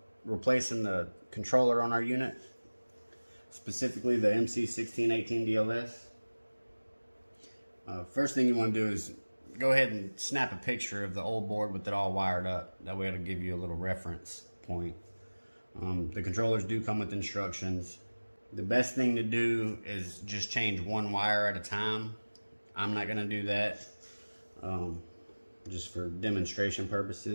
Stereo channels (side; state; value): both; inverted; correlation -1.00